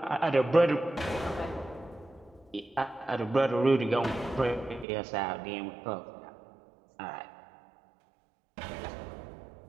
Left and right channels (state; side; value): drops out; left; at 4.9 s